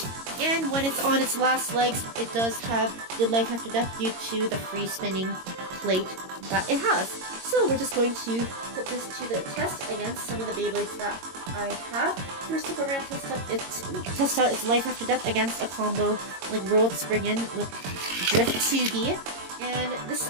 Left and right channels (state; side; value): late; left; 22 ms